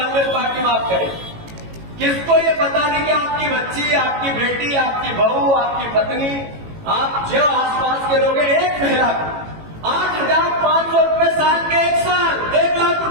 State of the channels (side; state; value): left; late; 18 ms